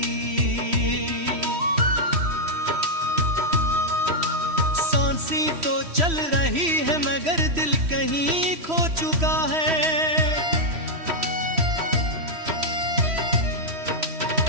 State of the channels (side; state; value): left; late; 3.1 ms